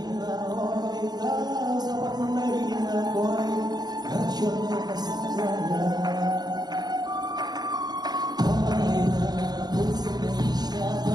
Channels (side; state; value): left; late; 0.20 ms